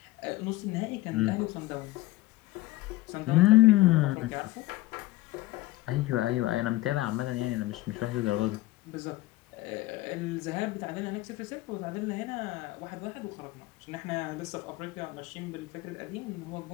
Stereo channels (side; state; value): right; quieter; 18.4 dB